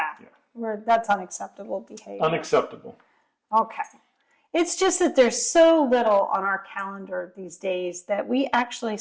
That's unacceptable behavior. Unacceptable. Okay. It's just that there's so little on our calendar these days that we actually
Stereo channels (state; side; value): identical; both; correlation 1.00